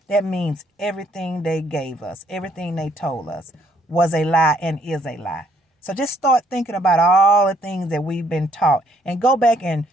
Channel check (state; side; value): normal; both; correlation 0.66